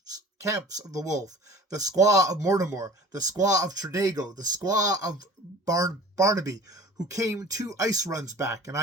of the wolf, the squaw of Mortimer, the squaw of Tredago, the squaw of Barnaby, who came 2 ice runs back, and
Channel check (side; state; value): both; normal; correlation 0.43